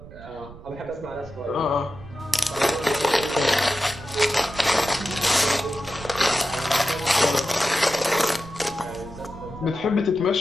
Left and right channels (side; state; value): right; noise; rumble, 17 dB below the sound